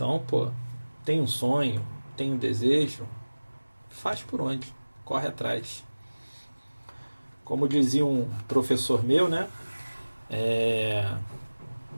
pô, tem um sonho, tem um desejo, faz por onde? Corre atrás. Como dizia um professor meu, né? É,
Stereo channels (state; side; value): inverted; both; correlation -1.00